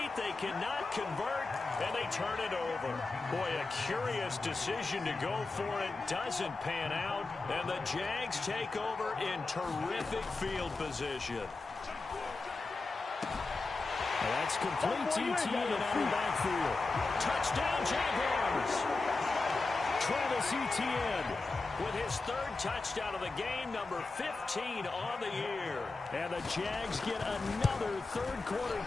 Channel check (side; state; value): right; quieter; 3.6 dB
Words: They cannot convert, and they turn it over. Boy, a curious decision to go for it. Doesn't pan out, and the Jags take over in terrific field position. That's complete to Etienne out of the backfield. Touchdown, Jaguars. Travis Etienne with his 3rd touchdown of the game, number 15 on the year. And the Jags get another third-quarter